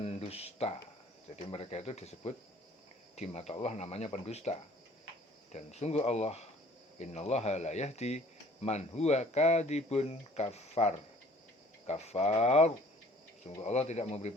Jadi mereka itu disebut di mata Allah namanya pendusta. Dan sungguh Allah, innallaha la yahdi man huwa kadibun kafar. Kafar, sungguh Allah tidak memberi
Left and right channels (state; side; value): normal; both; correlation 0.53